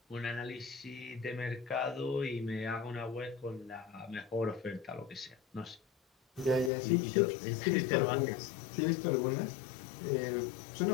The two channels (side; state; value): right; drops out; at 6.7 s